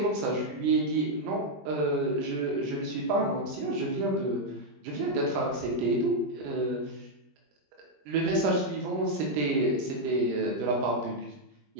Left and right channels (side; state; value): left; late; 20 ms